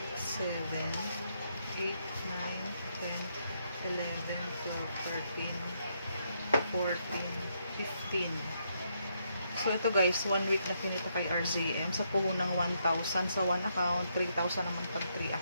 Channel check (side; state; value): both; inverted; correlation -0.76